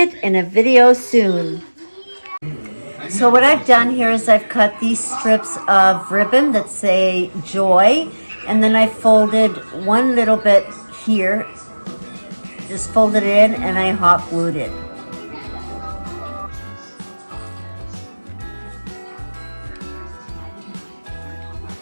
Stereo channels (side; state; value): both; inverted; correlation -1.00